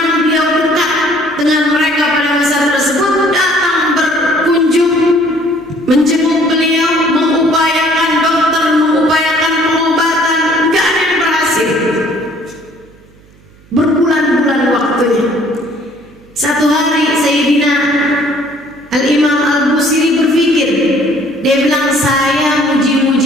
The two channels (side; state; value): right; noise; hum, 28 dB below the sound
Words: beliau dekat dengan mereka pada masa tersebut datang berkunjung, menjenguk beliau, mengupayakan dokter, mengupayakan pengobatan, nggak ada yang berhasil. Berbulan-bulan waktunya. Satu hari Sayyidina Al-Imam Al-Busiri